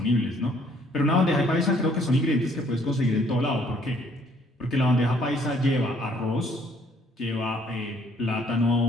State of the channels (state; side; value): normal; both; correlation 0.63